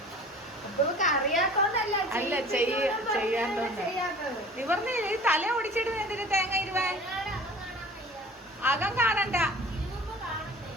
അറിയാത്തോണ്ടല്ല, അല്ല ചെയ്യാത്തോണ്ട് നിവർന്നില്ലേ. തല ഓടിച്ചിടുന്ന എന്തിന് തേങ്ങ ഇരുവാൻ? അകം കാണണ്ട.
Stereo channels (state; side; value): normal; both; correlation 0.43